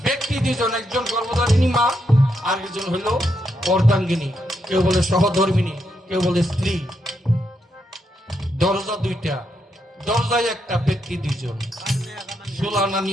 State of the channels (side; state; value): both; normal; correlation 0.80